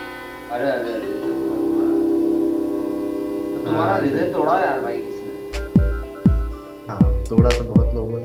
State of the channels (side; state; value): both; identical; correlation 1.00